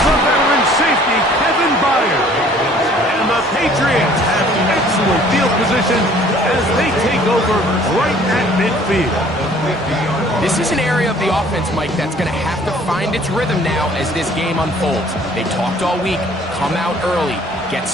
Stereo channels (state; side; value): normal; both; correlation 0.55